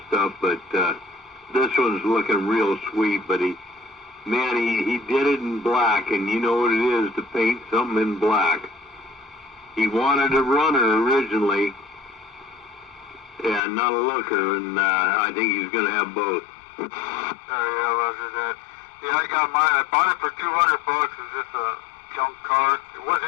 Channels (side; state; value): right; drops out; at 13.6 s